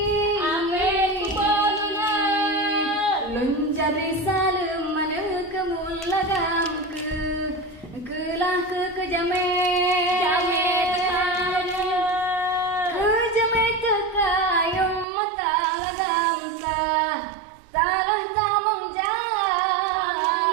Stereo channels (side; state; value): left; drops out; at 15.1 s